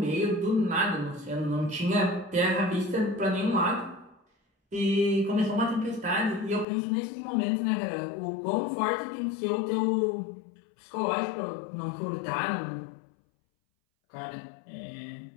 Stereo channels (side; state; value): right; drops out; at 6.7 s